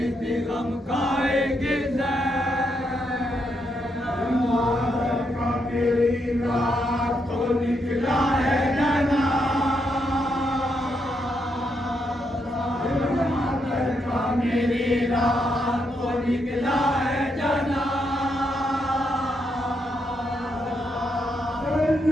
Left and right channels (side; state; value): both; normal; correlation 0.80